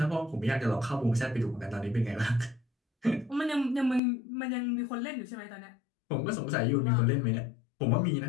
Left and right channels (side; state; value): right; drops out; at 4.0 s